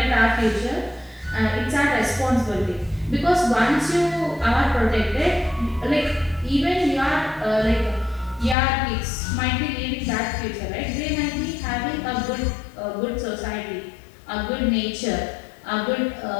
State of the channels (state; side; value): drops out; right; at 8.6 s